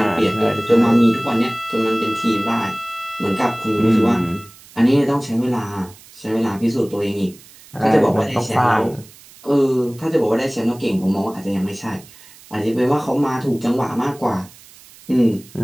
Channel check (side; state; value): right; noise; hiss, 23 dB below the sound